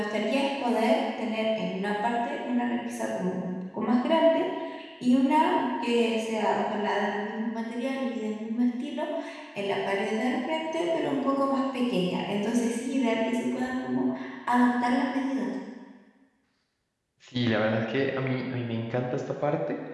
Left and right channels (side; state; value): both; identical; correlation 1.00